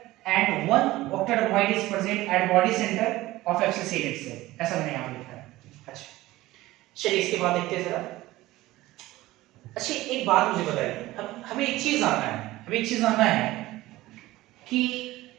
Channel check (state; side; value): quieter; left; 17.6 dB